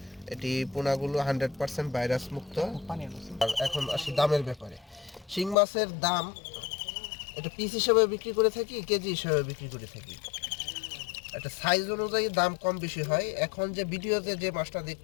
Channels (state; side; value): drops out; right; at 5.6 s